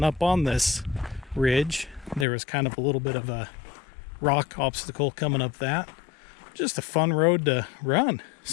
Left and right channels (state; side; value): drops out; right; at 2.2 s